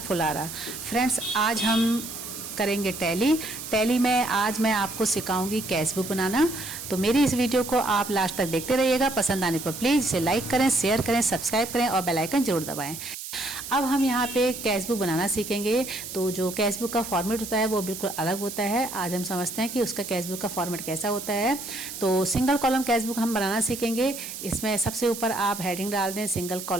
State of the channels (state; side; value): noise; right; hiss, 9 dB below the sound